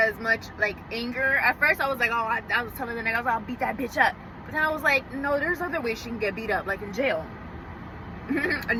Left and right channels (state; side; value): identical; both; correlation 1.00